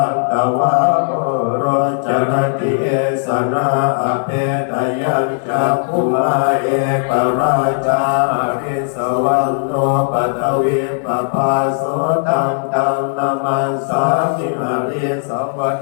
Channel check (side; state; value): right; silent; digital silence